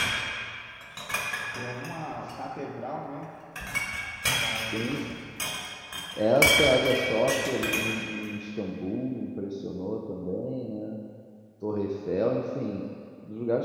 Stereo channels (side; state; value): both; identical; correlation 1.00